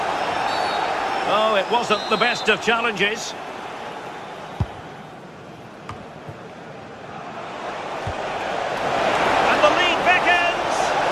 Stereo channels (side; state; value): both; identical; correlation 1.00